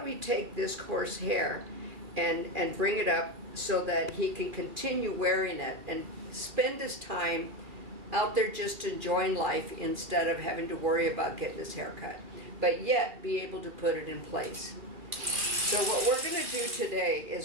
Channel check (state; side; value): late; left; 2.5 ms